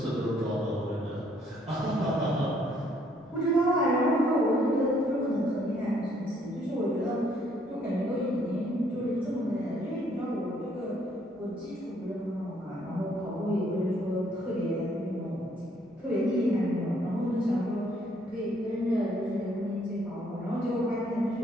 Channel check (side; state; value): both; normal; correlation 0.66